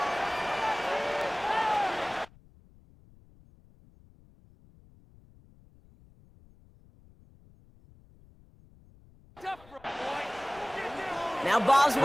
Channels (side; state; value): left; noise; rumble, 26 dB below the sound